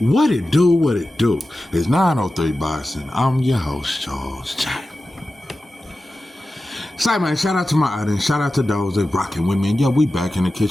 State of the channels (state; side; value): normal; both; correlation 0.94